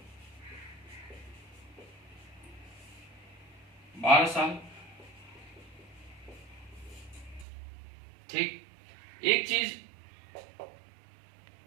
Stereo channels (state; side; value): drops out; left; at 7.5 s